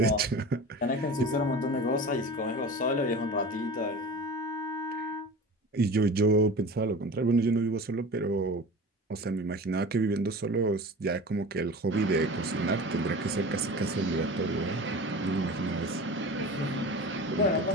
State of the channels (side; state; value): both; normal; correlation 0.35